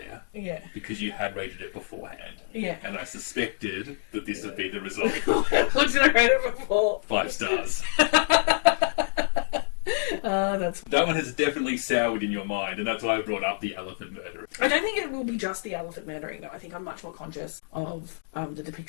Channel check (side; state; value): right; silent; digital silence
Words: Yeah. because you had rated it beforehand. Yeah. And I suspected that this would be the result. What did I rate it before? 5 stars. That's... That one has definitely soured in your mind, and that's why I brought up The Elephant Murderer. I don't think it will be just the elephant murdering, though. I think I'm much more conscious of the